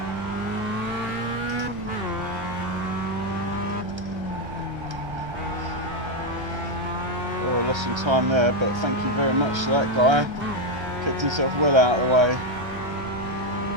Oh, I lost some time there, but thank you very much to that guy. Kept himself well out of the way.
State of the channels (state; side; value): late; left; 1.3 ms